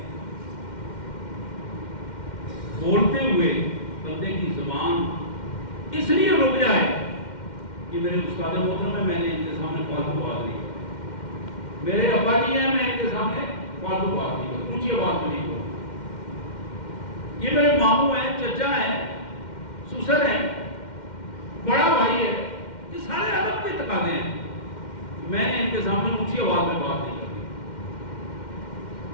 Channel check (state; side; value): late; right; 2.1 ms